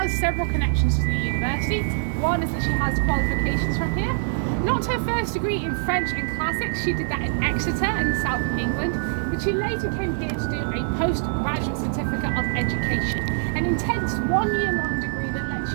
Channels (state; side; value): silent; left; 63 dB below the other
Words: several connections to the university. One is that she has qualifications from here. Not her first degree in French and classics, she did that in Exeter in the south of England, but she later came here to do a postgraduate certificate of education, an intense 1 year long degree that lets